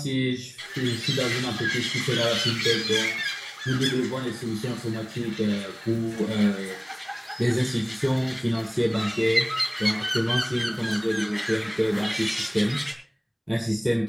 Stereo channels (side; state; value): both; identical; correlation 1.00